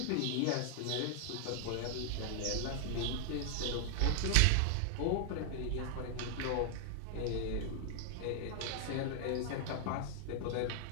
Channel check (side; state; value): both; different; correlation -0.01